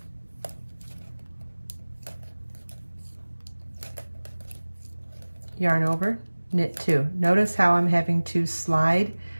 yarn over, knit 2. Notice how I'm having to slide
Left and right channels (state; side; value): inverted; both; correlation -1.00